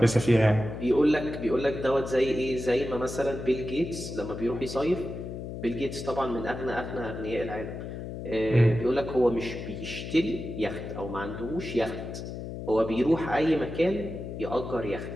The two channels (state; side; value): noise; left; hum, 8 dB below the sound